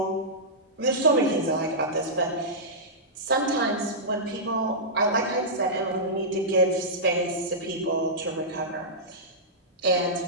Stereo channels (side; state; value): both; normal; correlation -0.14